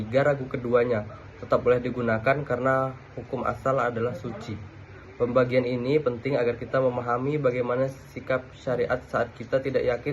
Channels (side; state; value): both; identical; correlation 1.00